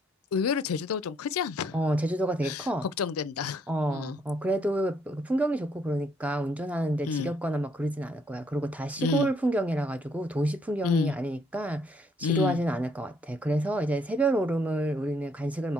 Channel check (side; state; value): both; normal; correlation 0.69